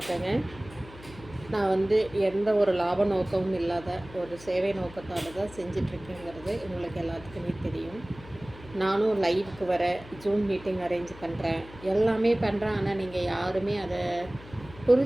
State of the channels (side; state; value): left; noise; hum, 18 dB below the sound